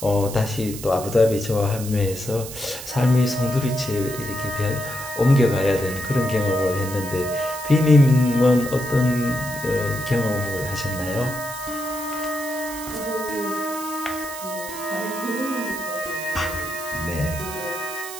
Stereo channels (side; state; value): right; noise; hiss, 11 dB below the sound